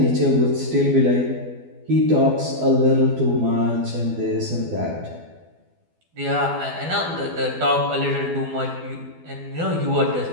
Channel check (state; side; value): late; left; 12 ms